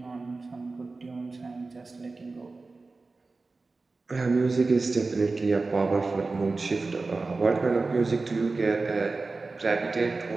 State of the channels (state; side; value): quieter; left; 3.7 dB